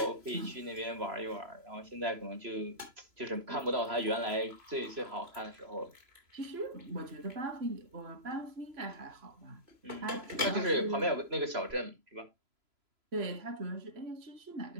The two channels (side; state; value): left; late; 3.0 ms